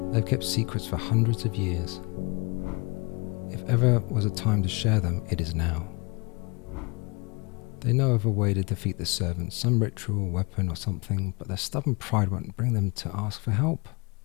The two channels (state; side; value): quieter; right; 28.4 dB